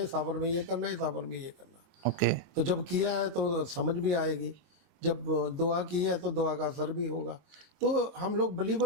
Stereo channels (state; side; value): late; left; 23 ms